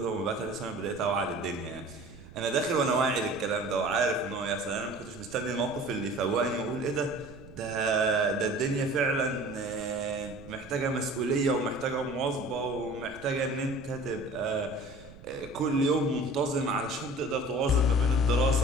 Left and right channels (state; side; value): noise; right; rumble, 18 dB below the sound